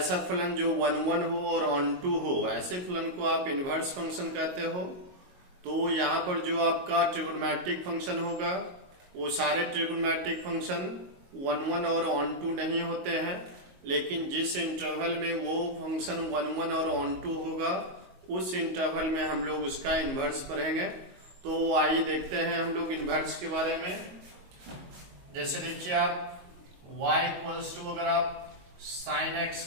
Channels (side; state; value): left; late; 22 ms